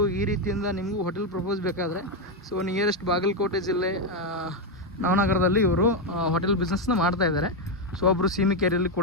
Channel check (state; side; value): normal; both; correlation 0.05